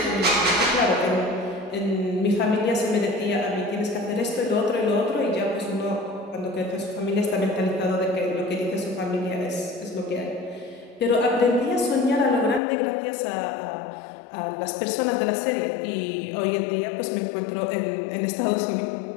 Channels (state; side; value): drops out; right; at 12.6 s